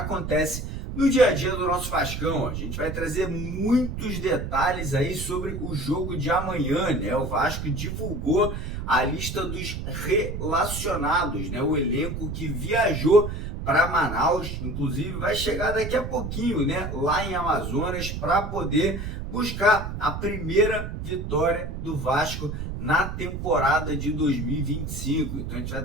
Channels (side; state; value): right; noise; rumble, 5 dB below the sound